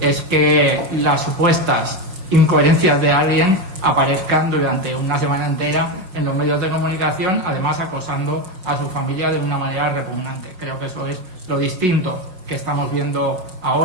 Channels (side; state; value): left; late; 5.4 ms